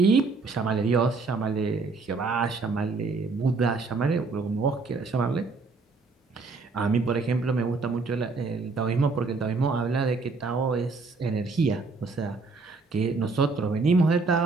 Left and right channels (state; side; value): quieter; left; 4.0 dB